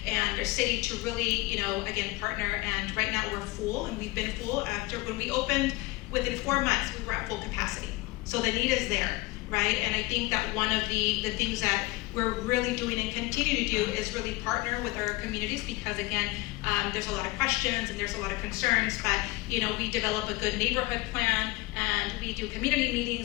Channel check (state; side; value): quieter; right; 21.7 dB